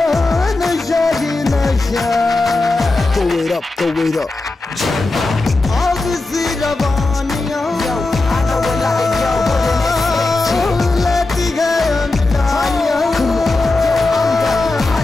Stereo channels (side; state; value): right; quieter; 3.2 dB